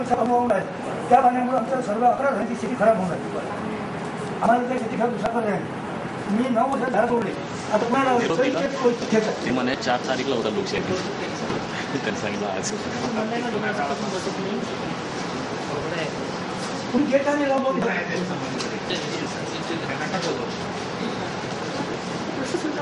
अनुभव आहे। त्या पाण्यामुळे आमच्या सर्व 11 घरांची स्थिती खराब होणार आहे। आम्हाला त्या स्थिती खराब दुसरा पर्याय नाही। मी 9 वर्ष झाड तोडले, आता पुन्हा ते म्हणे 4 तारीखला होता लोकशाही त्यांनी सांगितलं आज तुम्ही गेट आणि लावून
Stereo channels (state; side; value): identical; both; correlation 1.00